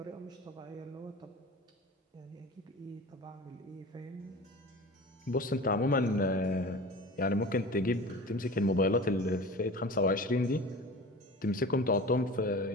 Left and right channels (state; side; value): normal; both; correlation 0.37